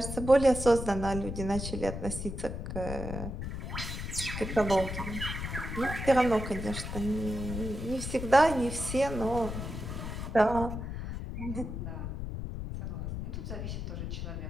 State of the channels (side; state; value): left; noise; rumble, 5 dB below the sound